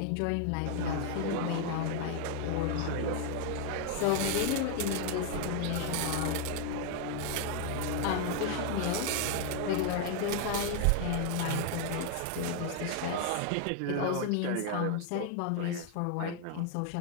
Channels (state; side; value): different; both; correlation 0.00